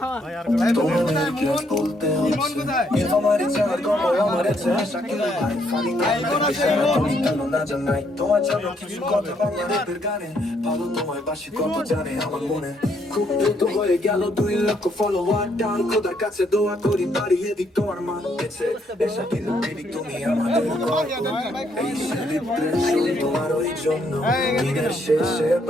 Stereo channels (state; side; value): normal; both; correlation 0.72